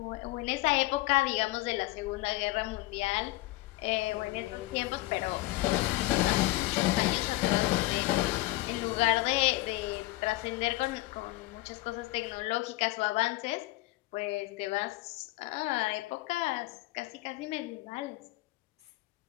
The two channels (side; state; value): right; quieter; 19.6 dB